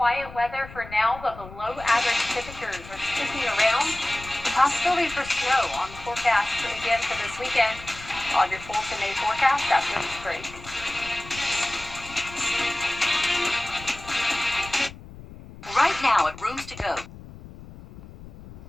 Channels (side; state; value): left; noise; rumble, 16 dB below the sound